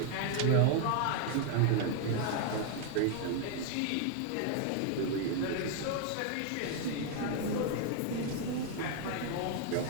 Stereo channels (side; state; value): both; different; correlation 0.00